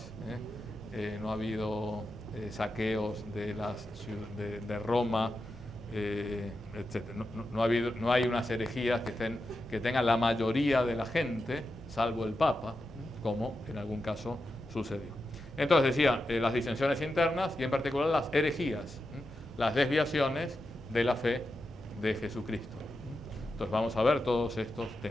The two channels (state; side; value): normal; both; correlation 0.89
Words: no ha habido saqueos de Roma, etc. No hay unas herejías que tengan la mayoría de la gente, salvo el Papa, como en algún caso sucedió. Entonces decía, las disensiones internas y en particular las herejías, las desviaciones de la fe de Jesucristo. Entonces vamos a ver todos estos